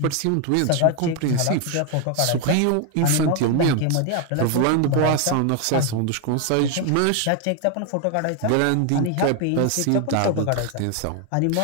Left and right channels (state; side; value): different; both; correlation 0.01